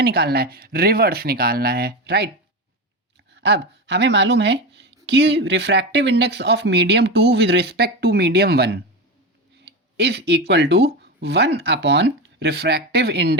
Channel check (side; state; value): both; normal; correlation 0.19